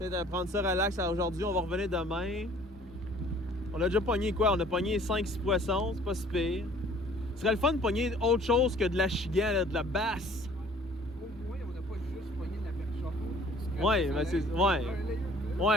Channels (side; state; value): both; normal; correlation 0.54